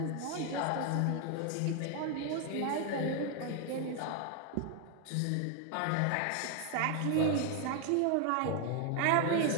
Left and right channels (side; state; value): both; different; correlation 0.00